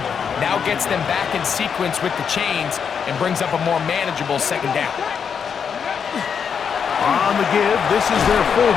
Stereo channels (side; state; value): right; quieter; 6.9 dB